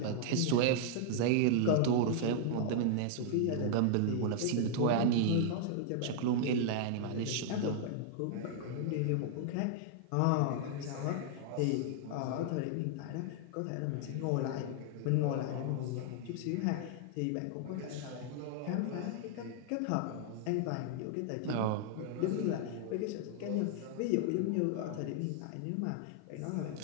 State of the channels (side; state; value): both; different; correlation 0.00